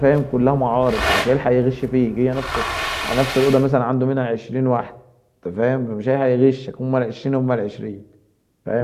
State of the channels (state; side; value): identical; both; correlation 1.00